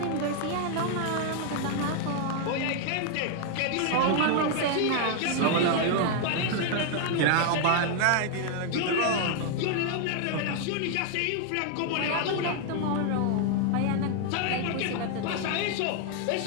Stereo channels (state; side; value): different; both; correlation 0.00